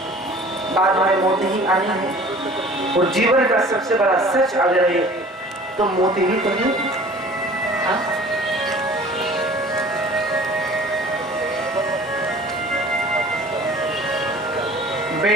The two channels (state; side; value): normal; both; correlation 0.47